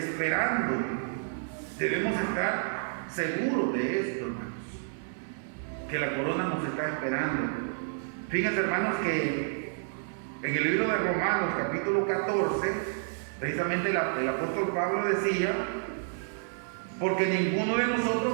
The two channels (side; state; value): left; silent; 58 dB below the other